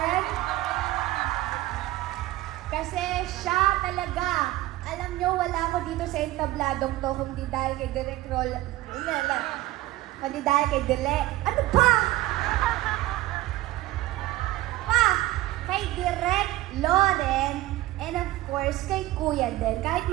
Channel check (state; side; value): quieter; left; 16.9 dB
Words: Kasi siya talaga. Alam nyo, wala ako dito sa entabladong to, kundi dahil kay Direct Lauren. Kundi dahil kay Dile. Ano ba? Kay Direct Lauren, and of course, kay Kuya din. Kahit